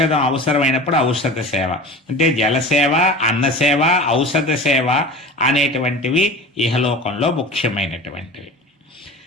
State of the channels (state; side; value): normal; both; correlation 0.35